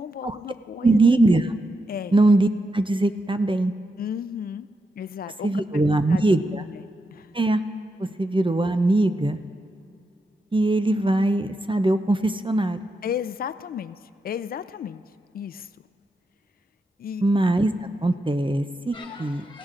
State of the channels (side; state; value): both; normal; correlation 0.85